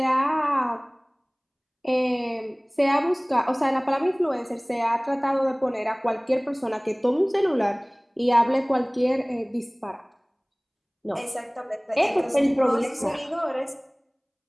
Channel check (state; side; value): identical; both; correlation 1.00